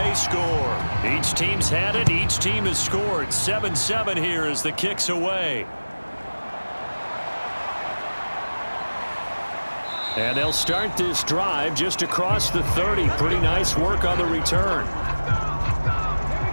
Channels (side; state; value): both; inverted; correlation -1.00